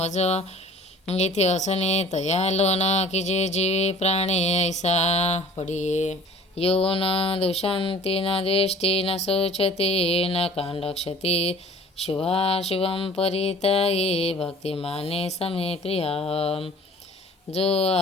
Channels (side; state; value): both; normal; correlation 0.48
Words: येथे असणे तया लोन की जे जीवे प्राणे ऐसा पडिये यो न दुशांती न द्वेष्टी न शोचते न कांडक्षती शुभाशुभम परिताये भक्तिमाने समे प्रिया जो